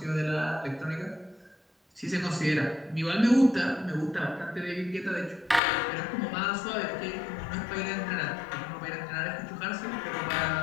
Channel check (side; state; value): right; drops out; at 5.6 s